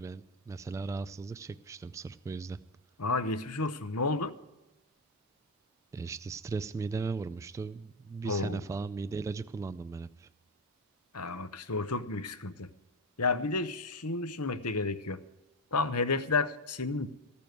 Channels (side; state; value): both; normal; correlation 0.11